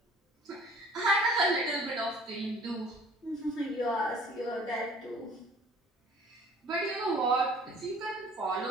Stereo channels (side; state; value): both; normal; correlation 0.51